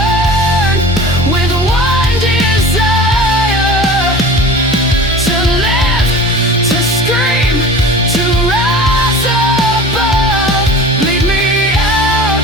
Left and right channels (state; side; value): normal; both; correlation 0.38